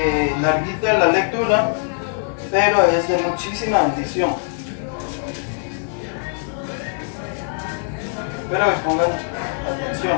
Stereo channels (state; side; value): silent; right; 65 dB below the other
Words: larguita la lectura, pero es de muchísima bendición. Espero que pongan atención.